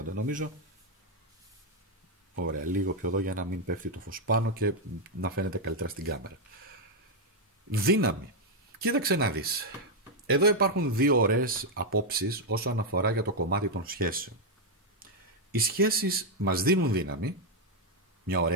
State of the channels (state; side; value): normal; both; correlation 0.01